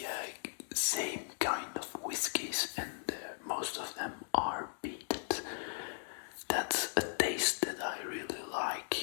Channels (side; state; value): right; silent; digital silence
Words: same kind of whiskies, and most of them are peated. That's a taste that I really